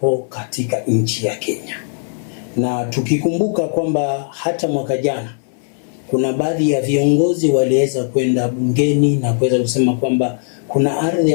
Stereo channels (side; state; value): right; silent; 60 dB below the other